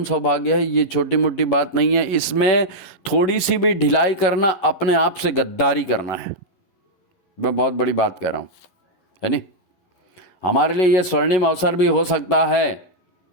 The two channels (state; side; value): late; right; 11 ms